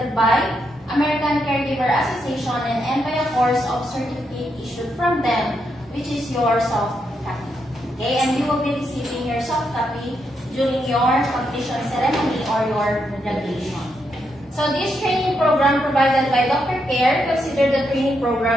by American Caregiver Association and by a course of certificate issued from them, which is your soft copy. Okay? And you will be receiving your soft copy during your completion ceremony or your graduation. So this training program provided by Dr. Care considered the training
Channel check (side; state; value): both; normal; correlation 0.81